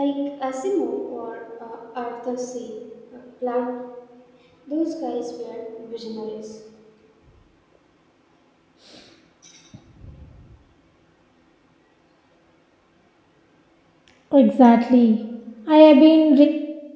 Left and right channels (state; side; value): identical; both; correlation 1.00